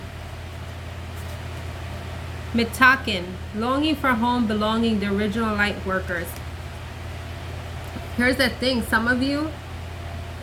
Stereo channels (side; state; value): both; identical; correlation 1.00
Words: Mitaken, longing for home, belonging, the original light workers. Here's the thing, some of you,